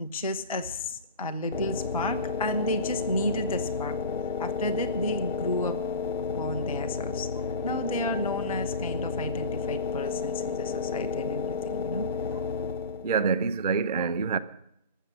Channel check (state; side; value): inverted; both; correlation -0.31